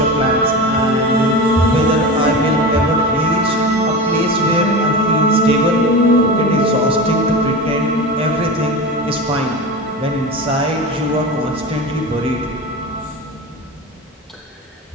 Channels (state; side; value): normal; both; correlation 0.26